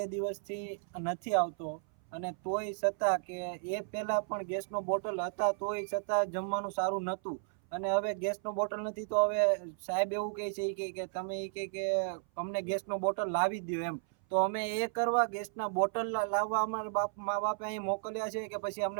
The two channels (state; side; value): silent; left; 55 dB below the other